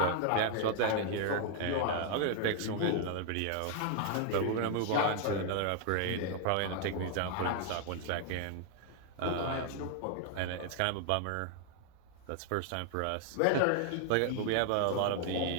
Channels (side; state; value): both; different; correlation 0.00